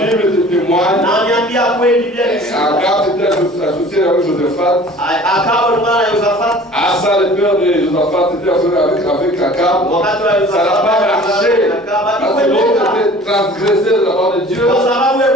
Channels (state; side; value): normal; both; correlation 0.46